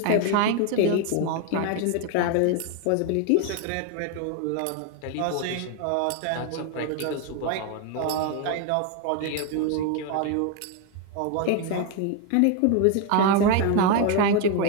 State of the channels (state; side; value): different; both; correlation 0.01